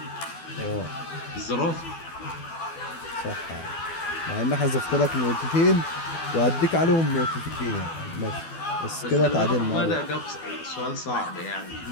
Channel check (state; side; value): late; right; 12 ms